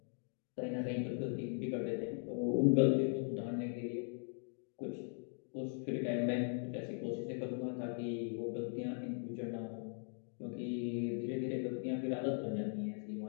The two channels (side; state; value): right; silent; 51 dB below the other